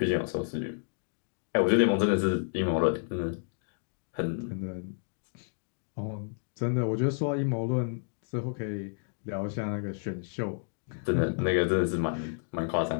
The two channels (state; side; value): silent; right; digital silence